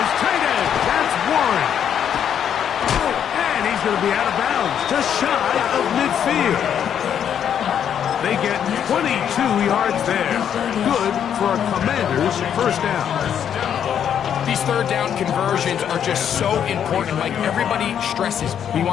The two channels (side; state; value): right; quieter; 8.9 dB